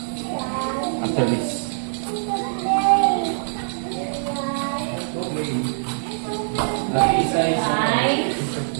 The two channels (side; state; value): left; silent; digital silence